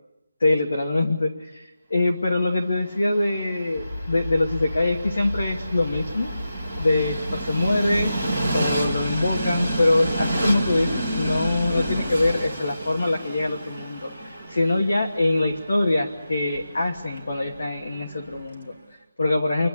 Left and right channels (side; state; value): both; inverted; correlation -0.91